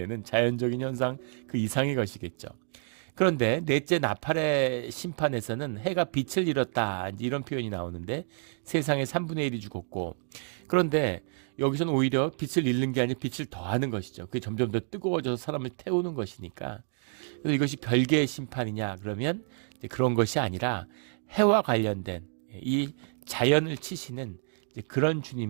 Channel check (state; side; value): silent; left; 58 dB below the other